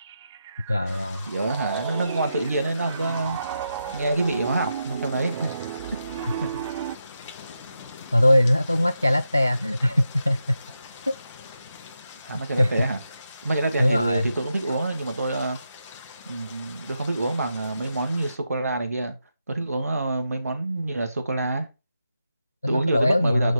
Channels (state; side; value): inverted; both; correlation -0.87